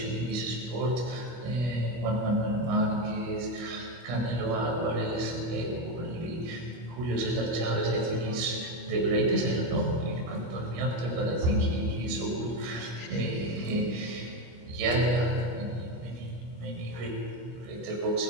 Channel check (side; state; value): left; late; 25 ms